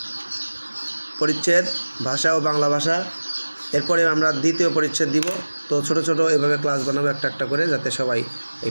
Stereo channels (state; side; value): inverted; both; correlation -1.00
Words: পরিচ্ছেদ ভাষা ও বাংলা ভাষা। এরপরে আমরা দ্বিতীয় পরিচ্ছেদ দিব। তো ছোট ছোট এভাবে ক্লাস বানাবো একটা একটা করে, যাতে সবাই এই